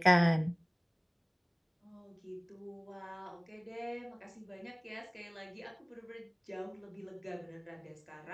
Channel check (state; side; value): identical; both; correlation 1.00